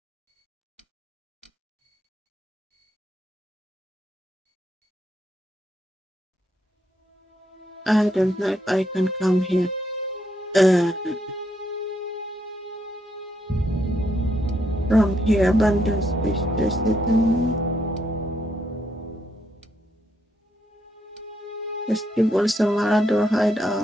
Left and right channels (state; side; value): normal; both; correlation 0.77